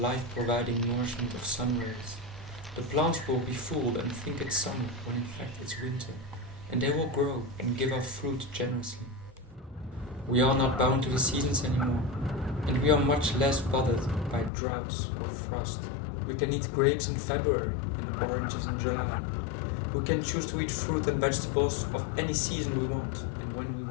nourishment of sun rays. The plants will be fooled and think it's summer when in fact it's winter, and they will grow and give off fruit generously. We are not bound to the seasons anymore, and we are much less bothered by droughts or frost. We can eat grapes in February and oranges in July. We can choose to eat fruit and vegetables of any season we want and when we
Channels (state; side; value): drops out; right; at 14.5 s